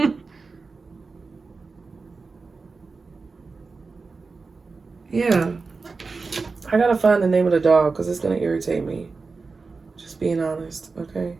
Yeah. I gotta find the name of the dog because it's gonna irritate me. Just being honest, okay?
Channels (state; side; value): quieter; left; 4.3 dB